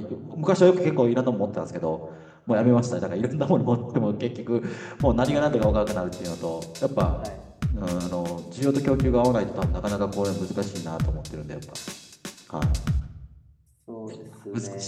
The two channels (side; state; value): both; identical; correlation 1.00